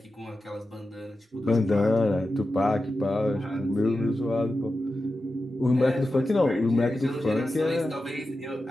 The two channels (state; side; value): normal; both; correlation 0.91